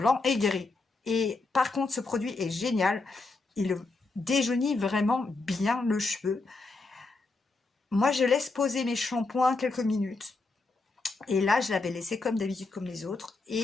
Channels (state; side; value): quieter; right; 3.6 dB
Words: et gris. Et par contre, ce produit est génial. Il déjaunit vraiment bien le cheveu. Moi, je laisse poser mes shampoings quelques minutes. Et là, je l'avais laissé comme d'habitude, comme les autres.